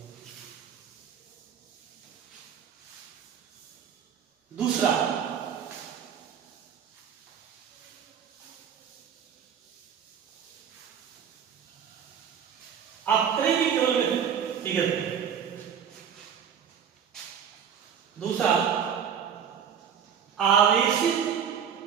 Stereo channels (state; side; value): quieter; left; 8.0 dB